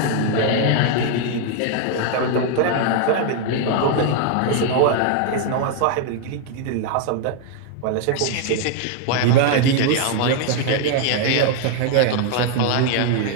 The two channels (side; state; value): both; different; correlation 0.00